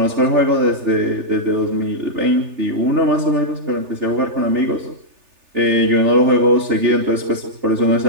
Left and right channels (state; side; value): late; left; 3.4 ms